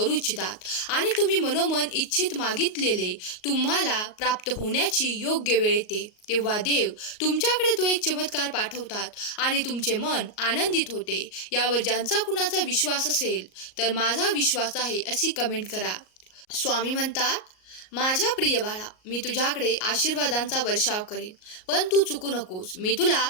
इच्छितात आणि तुम्ही मनोमन इच्छित मागितलेले तुम्हाला प्राप्त होण्याची योग्य वेळ येते तेव्हा देव तुमच्याकडे तो एक चमत्कार पाठवतात आणि तुमचे मन आनंदित होते. यावर ज्यांचा कुणाचा विश्वास असेल तर माझा विश्वास आहे अशी कमेंट करा. स्वामी म्हणतात, माझ्या प्रिय बाळा, मी तुझ्याकडे आशीर्वादांचा वर्षाव करेन, पण तू चुकू नकोस. मी तुला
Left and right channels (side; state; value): right; late; 38 ms